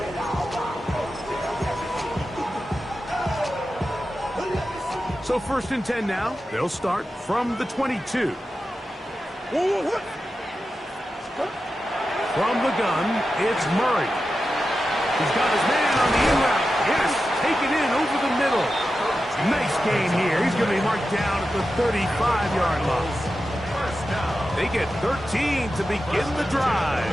So 1st and 10 now. They'll start from the 22. From the gun, it's Murray. He's got his man on the in route. Yes, take it in over the middle. Nice gain here. He's going to be marked down at the 35-yard line. They get 13 to begin the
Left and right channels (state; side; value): normal; both; correlation 0.91